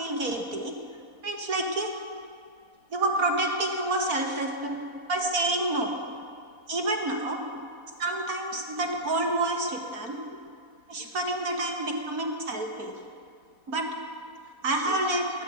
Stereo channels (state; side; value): late; left; 4.1 ms